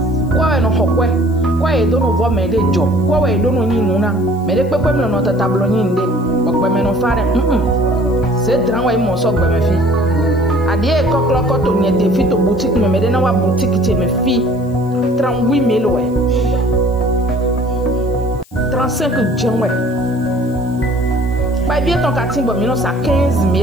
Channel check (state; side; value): noise; left; hiss, 29 dB below the sound